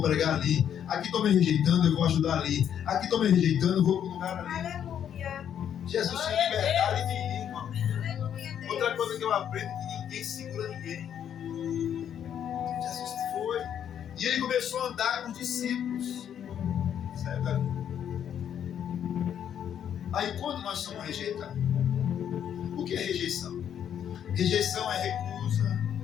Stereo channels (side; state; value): right; quieter; 9.3 dB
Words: pregar ali. Aqui estão me rejeitando, eu vou ajudar ali. Aqui estão me rejeitando, eu vou para o lugar ali. Aleluia. Jesus tinha liberdade de ir, irmão. Aleluia, Deus. Outra coisa que eu aprendo é que ninguém segura ninguém. Jesus foi. E ele começou a andar com os discípulos. Certo? Aí quando nós somos rejeitados, o que é rejeição? Rejeição é recusa,